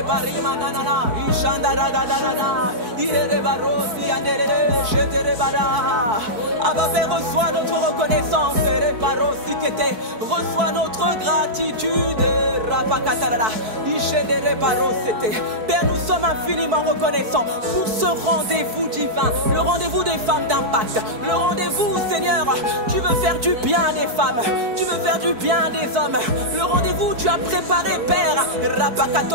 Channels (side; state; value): left; late; 4.6 ms